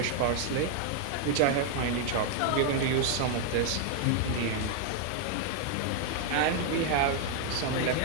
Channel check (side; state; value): both; different; correlation 0.00